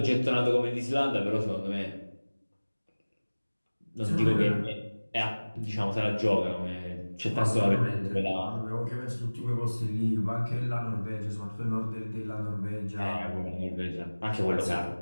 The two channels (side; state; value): both; inverted; correlation -1.00